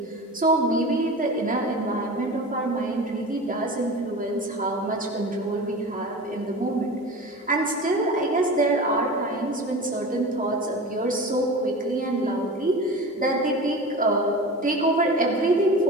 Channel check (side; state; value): both; normal; correlation 0.32